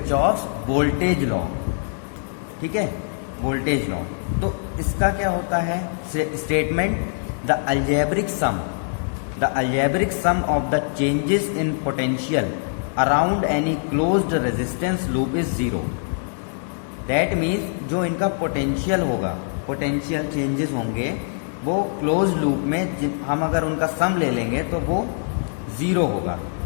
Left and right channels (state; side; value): silent; right; digital silence